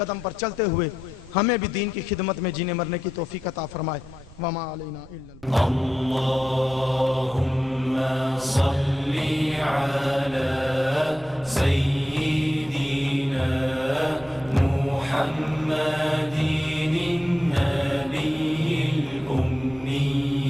پر چلتے ہوئے ہمیں بھی دین کی خدمت میں جینے مرنے کی توفیق عطا فرمائے۔ وما علینا الا اللہم صلی علی سیدنا محمد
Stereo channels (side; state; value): right; noise; rumble, 21 dB below the sound